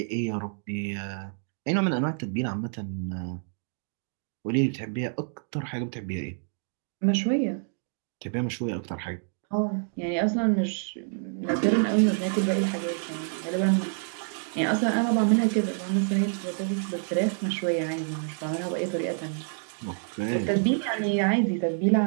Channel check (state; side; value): silent; left; 59 dB below the other